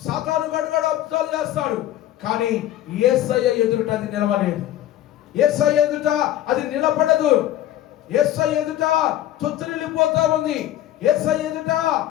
సాతానుగాడు కూడా అద్భుతాలు చేస్తాడు, కానీ యేసయ్య ఎదుట అది నిలవలేదు. యేసయ్య ఎదుట అది నిలబడదు. యేసయ్య ఎదుట తొత్తిల్లిపోతా ఉంది. యేసయ్య ఎదుట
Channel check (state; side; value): quieter; right; 12.8 dB